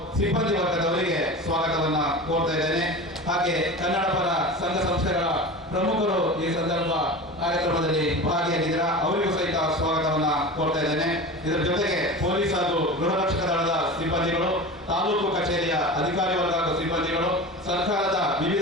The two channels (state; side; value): normal; both; correlation 0.31